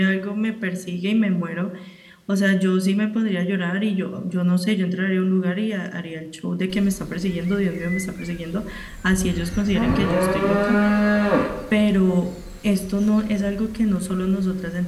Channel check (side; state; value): both; identical; correlation 1.00